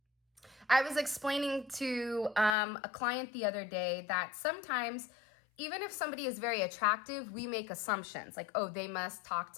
I was explaining to a client the other day that sometimes, even if somebody is very attractive, we make assumptions like, oh, they must talk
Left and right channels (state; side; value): drops out; right; at 2.6 s